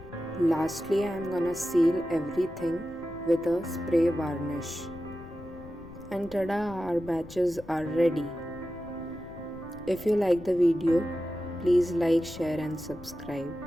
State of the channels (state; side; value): noise; left; rumble, 17 dB below the sound